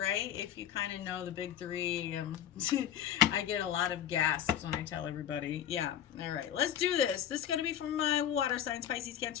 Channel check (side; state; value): right; quieter; 10.2 dB